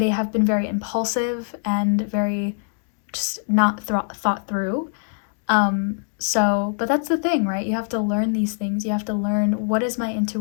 impulsive and very just not thought through. But that's the thing, right? You have to learn these things. You have to learn, what is my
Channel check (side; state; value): right; silent; 63 dB below the other